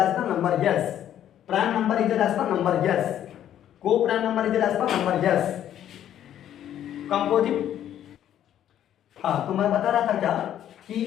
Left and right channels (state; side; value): quieter; right; 10.9 dB